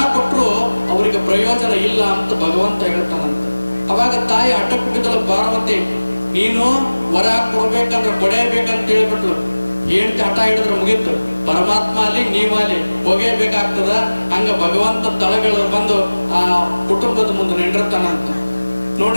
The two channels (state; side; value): inverted; both; correlation -1.00